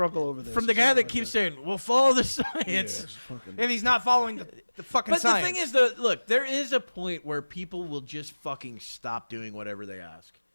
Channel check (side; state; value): both; inverted; correlation -1.00